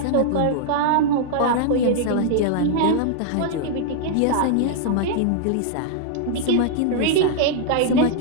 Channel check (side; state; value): both; different; correlation -0.01